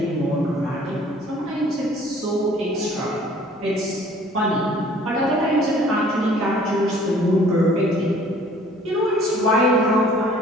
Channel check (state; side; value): normal; both; correlation 0.54